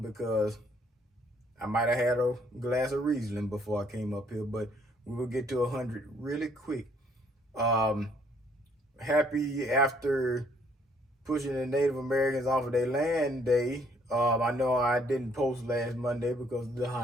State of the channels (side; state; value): both; normal; correlation 0.65